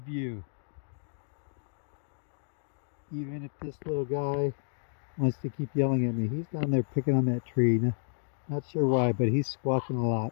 Even if this little guy wants to keep yelling at me. He's down there picking on that tree. Not sure why, but he's squawking a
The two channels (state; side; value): silent; right; digital silence